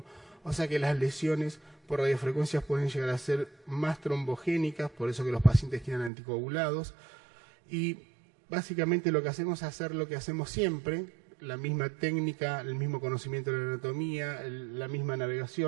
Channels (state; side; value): drops out; left; at 6.1 s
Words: o sea que las lesiones por radiofrecuencias pueden llegar a ser más trombogénicas, por eso que los pacientes quedan anticoagulados, y básicamente lo que hacemos es hacer lo que hacemos siempre, la misma técnica, el mismo conocimiento de la anatomía, la misma